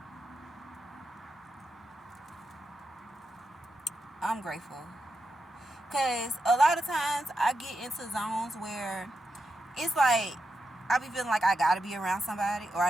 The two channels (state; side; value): normal; both; correlation 0.87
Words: I'm grateful. Because a lot of times I get into zones where it's like I be feeling like I gotta be around somebody or I